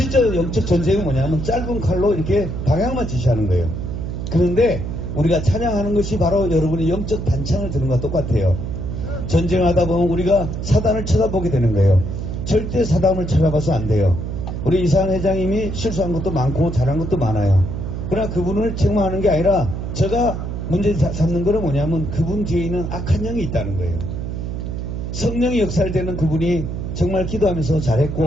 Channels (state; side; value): noise; right; hum, 5 dB below the sound